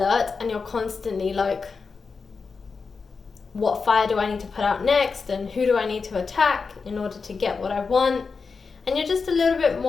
and you're constantly like, what fire do I need to put out next, and who do I need to attack in order to get what I want? And you're just a little bit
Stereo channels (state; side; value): quieter; right; 4.9 dB